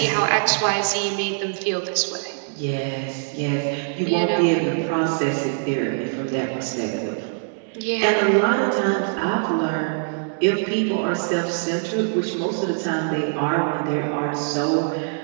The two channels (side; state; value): left; silent; digital silence